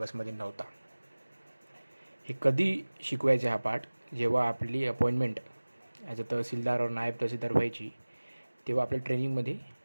नव्हता. हे कधी शिकवायचे हा पार्ट? जेव्हा आपली अपॉइंटमेंट ॲज अ तहसीलदार और नायब तहसीलदार व्हायची, तेव्हा आपल्या ट्रेनिंगमध्ये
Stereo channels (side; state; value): both; inverted; correlation -1.00